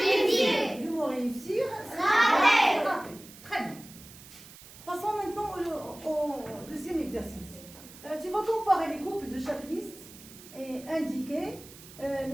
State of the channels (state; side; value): noise; right; hiss, 19 dB below the sound